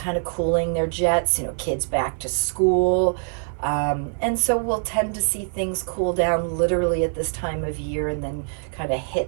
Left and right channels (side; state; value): left; silent; 57 dB below the other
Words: of cooling their jets, kids back to school. And so we'll tend to see things cool down literally at this time of year and then kind of